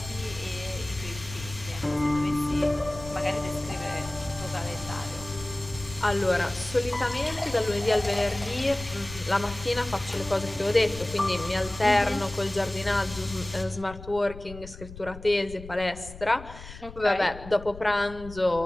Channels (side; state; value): left; noise; rumble, 14 dB below the sound